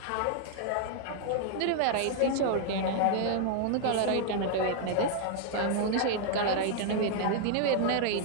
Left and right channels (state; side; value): different; both; correlation 0.00